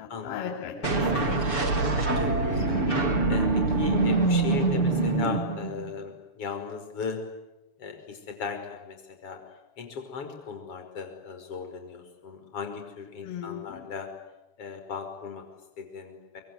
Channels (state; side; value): late; right; 7.3 ms